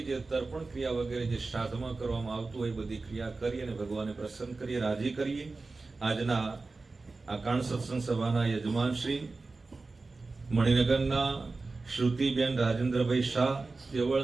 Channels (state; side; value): quieter; left; 3.7 dB